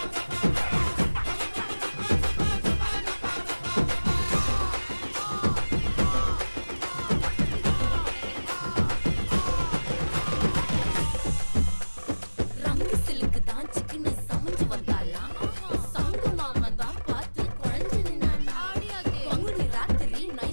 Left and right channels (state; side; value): inverted; both; correlation -1.00